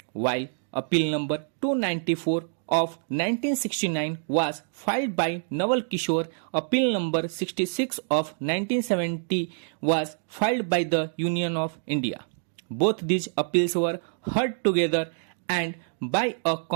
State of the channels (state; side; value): silent; left; digital silence